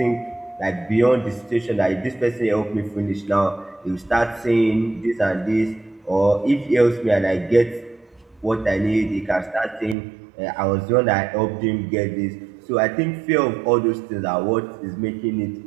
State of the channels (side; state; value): left; drops out; at 10.0 s